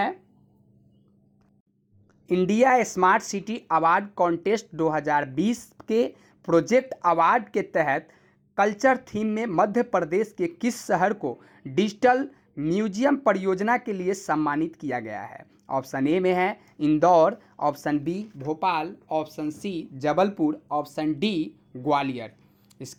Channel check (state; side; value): identical; both; correlation 1.00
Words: India smart city award contest 2020 के प्रोजेक्ट अवार्ड के तहत कल्चर थीम में मध्य प्रदेश के किस शहर को डिजिटल म्यूजियम परियोजना के लिए सम्मानित किया गया है? ऑप्शन ए में है Indore, option B Bhopal, option C Jabalpur, option D Gwalior.